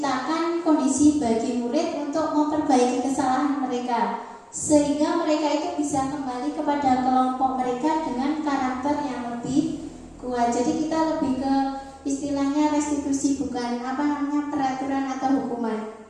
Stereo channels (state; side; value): identical; both; correlation 1.00